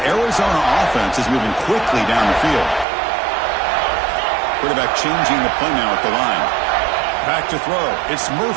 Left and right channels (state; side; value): drops out; left; at 2.9 s